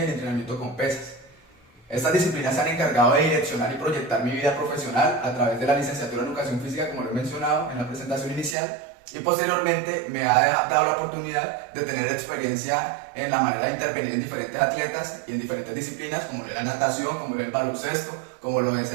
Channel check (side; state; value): left; drops out; at 8.6 s